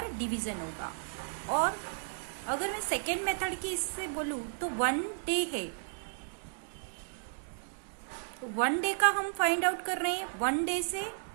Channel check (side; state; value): left; silent; digital silence